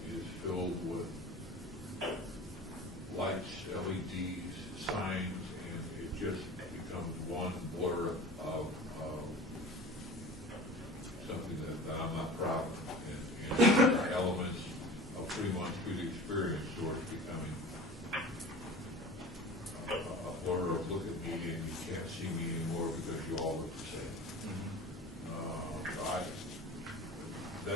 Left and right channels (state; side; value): normal; both; correlation 0.38